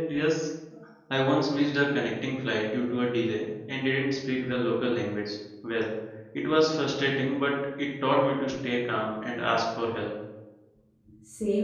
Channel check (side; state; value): both; identical; correlation 1.00